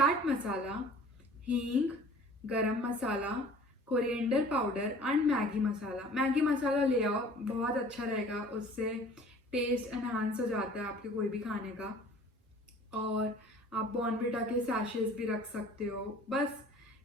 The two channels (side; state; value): both; normal; correlation 0.48